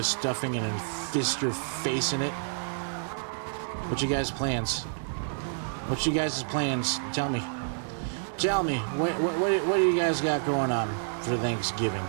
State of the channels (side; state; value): left; silent; digital silence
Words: stuffing and then fist your face in it? What you guys' plans? What you guys' plans? Tell me. Tell me. What do you guys got going on for Thanksgiving?